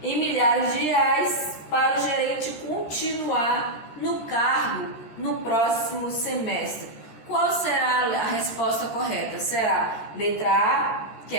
Em milhares de reais para o gerente continuar no cargo no próximo semestre. Qual será a resposta correta? Será letra A, que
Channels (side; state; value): right; late; 13 ms